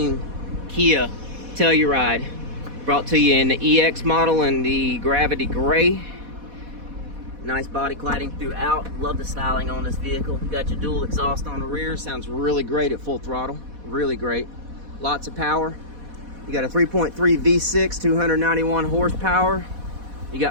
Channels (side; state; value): left; late; 4.1 ms